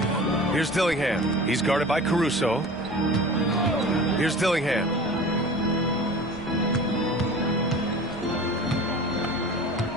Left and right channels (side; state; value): both; normal; correlation 0.39